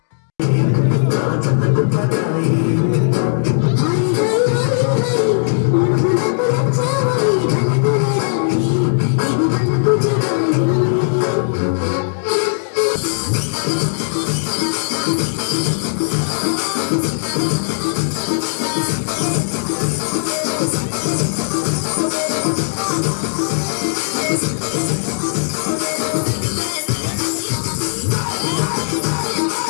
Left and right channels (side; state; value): right; silent; digital silence